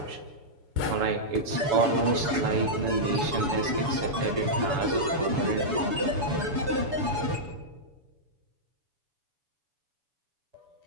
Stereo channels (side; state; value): left; late; 7.0 ms